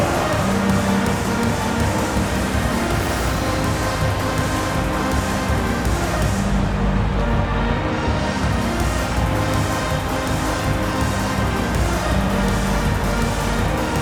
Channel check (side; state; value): both; identical; correlation 1.00